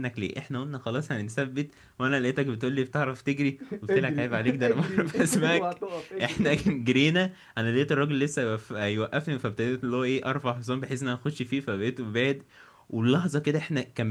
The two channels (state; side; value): identical; both; correlation 1.00